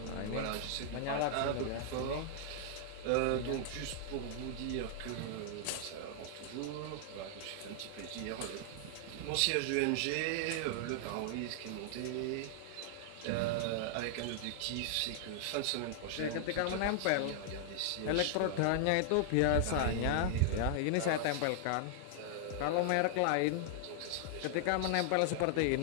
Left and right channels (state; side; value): different; both; correlation -0.01